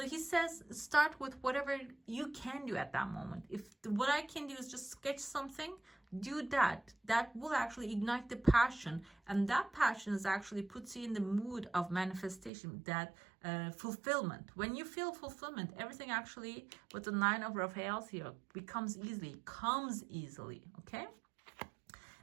he says, start with whatever you can do at that moment. If what I can do is just sketch something, do that. That will actually ignite the passion, and that passion is actually puts you in the mood of manifestation, that fulfillment. When you feel fulfillment, everything actually with the 9 of Raphaels here comes easily, okay?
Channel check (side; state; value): left; drops out; at 12.5 s